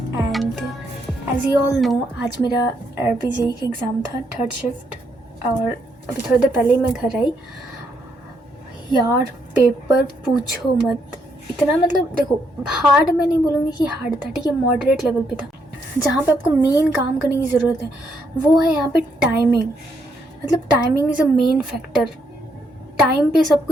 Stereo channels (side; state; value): both; normal; correlation 0.75